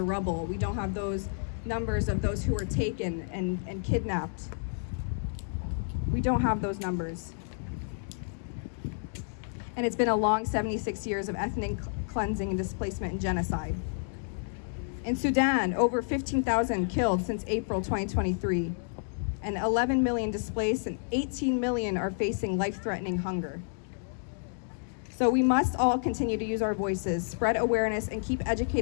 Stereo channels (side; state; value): right; silent; digital silence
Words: rubble. We don't have those numbers of those who were taken and kidnapped. We don't have those numbers. And it's been a long 76 years of ethnic cleansing and displacement and genocide. In Sudan, over 15,000 killed since April 2023, and 11 million displaced, and 18 million are facing life-threatening hunger. So we must all continue to use our voices, spread awareness, and keep